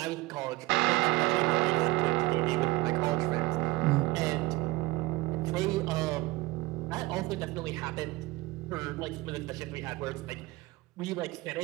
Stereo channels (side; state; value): left; quieter; 20.5 dB